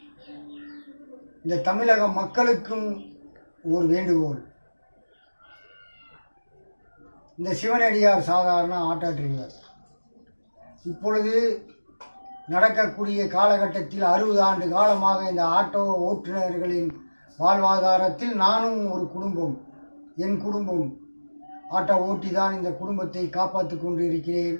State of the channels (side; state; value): both; inverted; correlation -1.00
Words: இந்த தமிழக மக்களுக்கும் ஒரு வேண்டுகோள். இந்த சிவனடியார் சாதாரண ஆட்டோ டிரைவர் இப்பொழுது நடக்கக்கூடிய காலகட்டத்தில் 60 ஆண்டு காலமாக இந்த ஆட்டோ ஓட்டுநர்களின் வாழ்வாதாரத்தில் நானும் ஒரு குடும்பம், என் குடும்பம் ஆட்டோ ஓட்டி தான் இந்த குடும்பத்தை காப்பாற்றி கொண்டு இருக்கிறேன்.